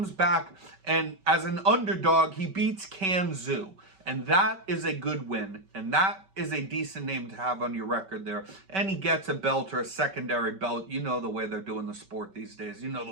back, and as an underdog, he beats Kanzu. And that is a good win. And that is a decent name to have on your record there. And he gets a belt or a secondary belt. You know the way they're doing the sport these days. You know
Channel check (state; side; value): late; left; 5.2 ms